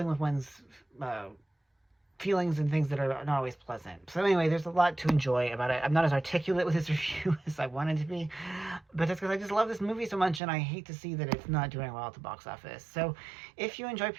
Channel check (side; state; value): left; drops out; at 10.4 s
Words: with one's feelings and things that are not always pleasant. So anyway, there's a lot to enjoy about it. I'm not as articulate with this review as I wanted to be, but that's because I just love this movie so much, and I hate to see that it's not doing well at the box office. So if you enjoy